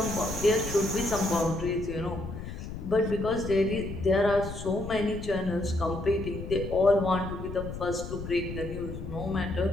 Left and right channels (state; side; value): noise; left; rumble, 8 dB below the sound